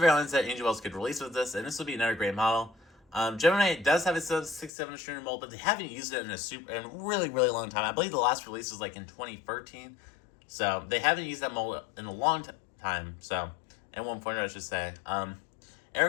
airlines that NG models could release with this, and this will be another great model. Gemini does have a 767-200 mold, but they haven't used it in a really, really long time. I believe the last release was like in 2013. So they haven't used that mold in a long time. So. And 1 I should say. Aero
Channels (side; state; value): right; drops out; at 4.7 s